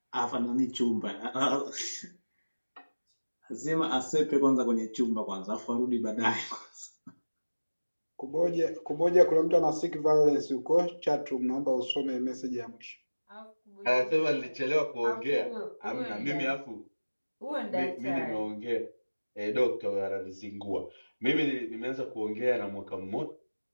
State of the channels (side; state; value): both; inverted; correlation -1.00